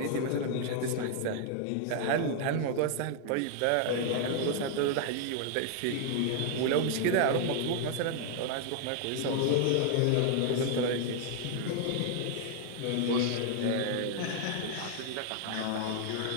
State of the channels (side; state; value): both; different; correlation 0.00